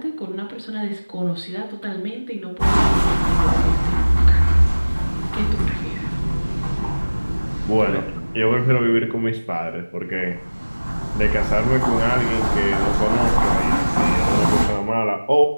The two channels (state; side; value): inverted; both; correlation -1.00